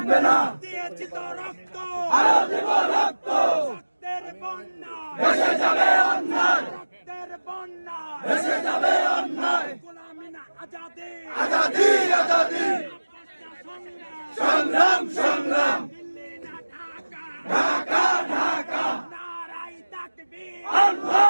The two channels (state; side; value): inverted; both; correlation -1.00